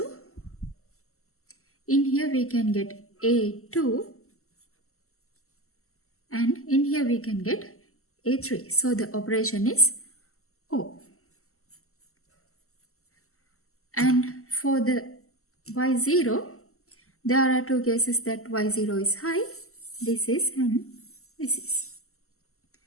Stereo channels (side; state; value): right; late; 0.63 ms